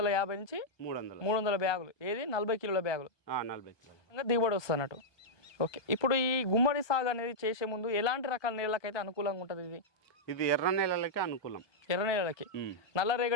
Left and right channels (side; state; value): right; late; 1.2 ms